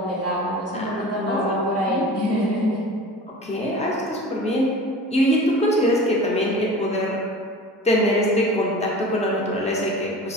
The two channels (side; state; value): both; normal; correlation 0.38